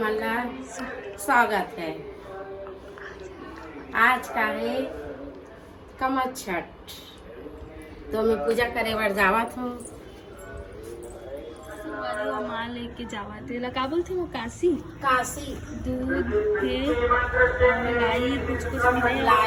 ला स्वागत है। आज का है कमच्छट, तो मैं पूजा करे बर जावत हूँ। माँ लेके जावा थे का बोलते वो काशी दूध के मलाई कुछ लाई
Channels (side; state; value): both; identical; correlation 1.00